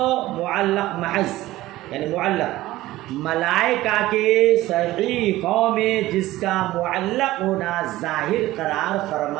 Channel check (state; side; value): quieter; left; 16.6 dB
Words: معلق محض یعنی معلق ملائکہ کے صحیفوں میں جس کا معلق ہونا ظاہر قرار